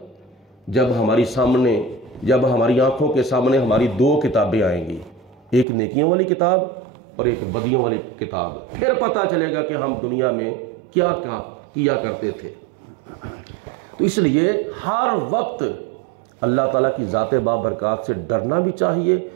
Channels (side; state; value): left; drops out; at 5.7 s